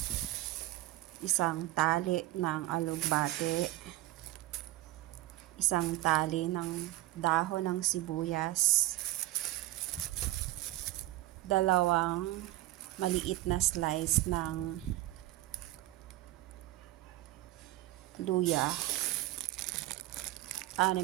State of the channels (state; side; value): quieter; left; 16.9 dB